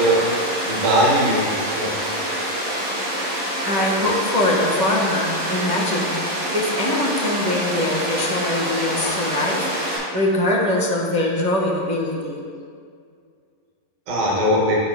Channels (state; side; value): late; left; 11 ms